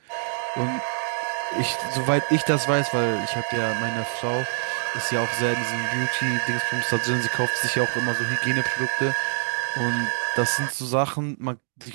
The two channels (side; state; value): left; silent; 56 dB below the other